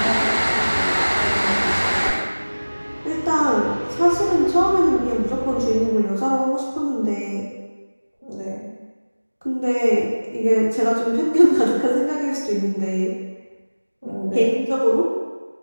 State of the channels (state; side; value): inverted; both; correlation -1.00